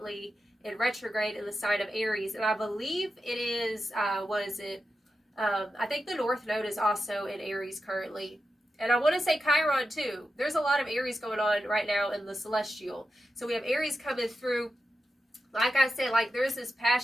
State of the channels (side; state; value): both; normal; correlation 0.90